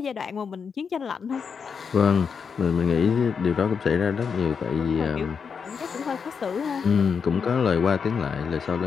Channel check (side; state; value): right; quieter; 6.1 dB